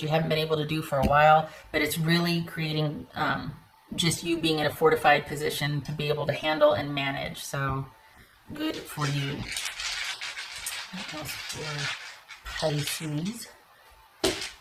you haven't been able to do for a while, but it's really creating just you being in a fortified position to be able to handle and manage. So good for you. What else for Pisces?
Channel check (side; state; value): both; identical; correlation 1.00